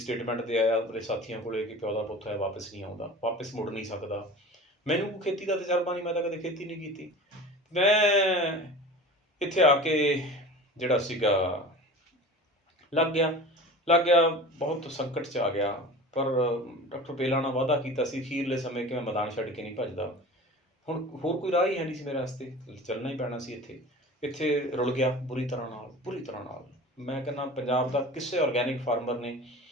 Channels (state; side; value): normal; both; correlation 0.37